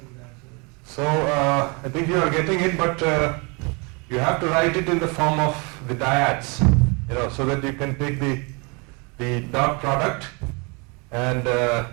So I think you are getting it, but you have to write it in the form of the dyads, so that you can take the dot product and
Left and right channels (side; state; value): left; quieter; 30.8 dB